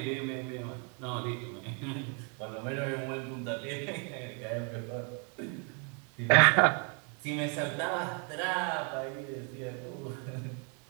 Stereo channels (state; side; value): quieter; left; 37.6 dB